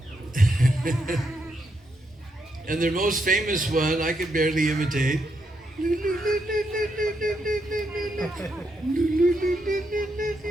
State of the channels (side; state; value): both; normal; correlation 0.80